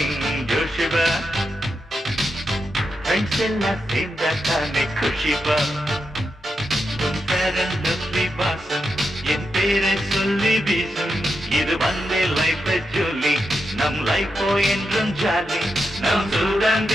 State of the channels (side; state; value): both; normal; correlation 0.86